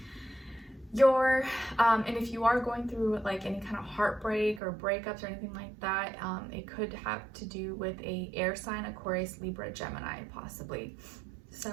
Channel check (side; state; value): left; drops out; at 4.6 s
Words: and if you are going through like any kind of heartbreak or breakups or anything like that, it could have to do with a air sign, Aquarius, Libra, Gemini, possibly